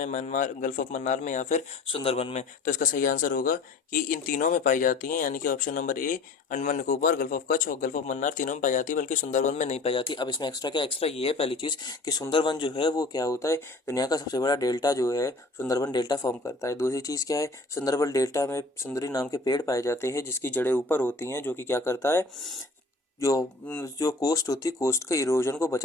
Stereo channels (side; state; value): right; quieter; 3.4 dB